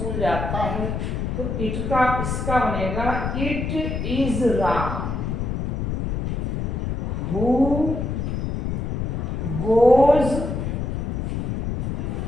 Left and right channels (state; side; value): noise; left; rumble, 2 dB below the sound